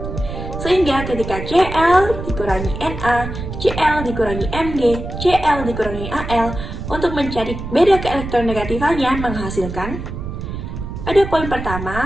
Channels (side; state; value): right; noise; rumble, 7 dB below the sound